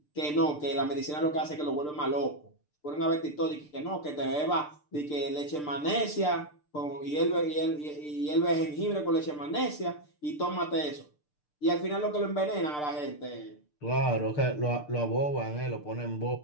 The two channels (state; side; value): late; right; 6.7 ms